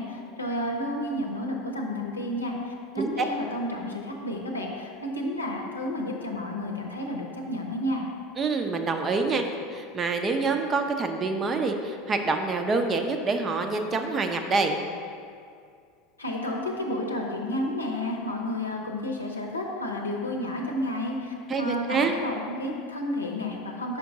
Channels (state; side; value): normal; both; correlation 0.39